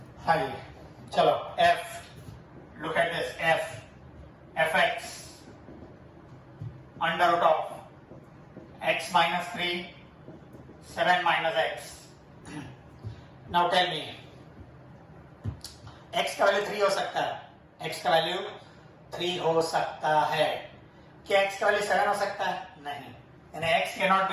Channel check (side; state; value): both; identical; correlation 1.00